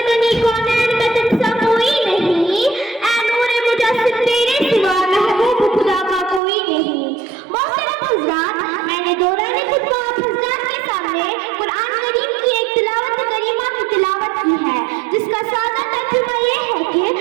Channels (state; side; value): drops out; left; at 6.4 s